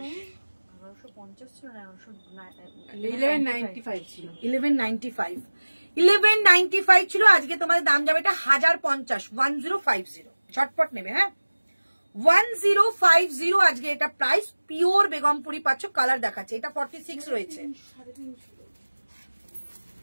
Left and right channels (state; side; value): inverted; both; correlation -1.00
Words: 1150 ছিল না 1195 ছিল। 1195 ছিল। আজকে তোমাদের দাম যাবে এটা 1050, 1050। ঝটপট নেবে। হ্যাঁ 1050 আজকে এটা প্রাইস। পিওর বেগমপুরি পাচ্ছ, কালার দেখাচ্ছে। এটা 46 রয়েছে,